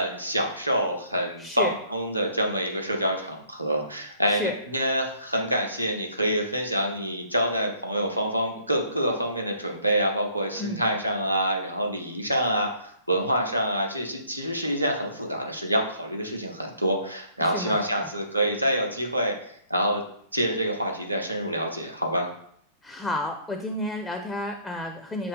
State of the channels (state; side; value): inverted; both; correlation -0.62